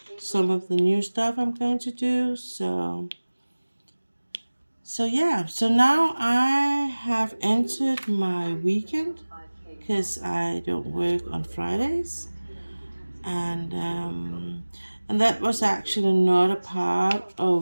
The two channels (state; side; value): inverted; both; correlation -1.00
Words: some of the new stuff I'm going to do. So yeah, so now I have entered my weekend because I don't work on Fridays, and um, and that was actually not a part